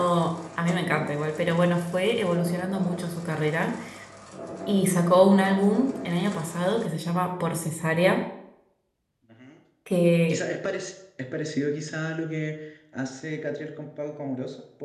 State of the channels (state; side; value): identical; both; correlation 1.00